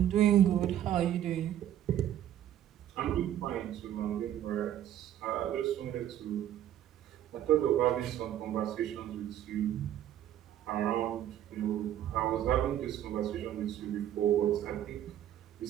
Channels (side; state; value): left; quieter; 11.4 dB